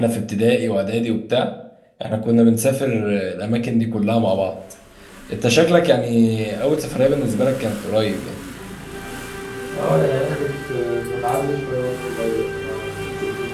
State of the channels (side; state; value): both; identical; correlation 1.00